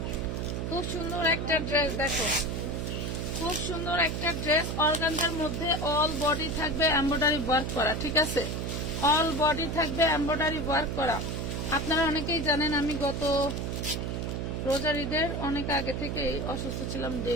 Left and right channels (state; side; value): noise; right; hum, 2 dB below the sound